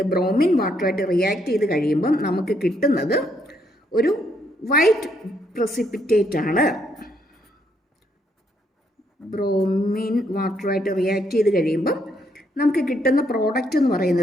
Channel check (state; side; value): normal; both; correlation 0.73